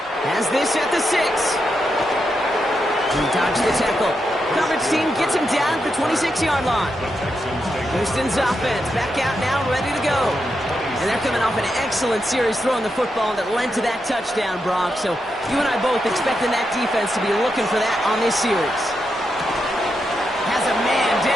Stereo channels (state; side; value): normal; both; correlation 0.85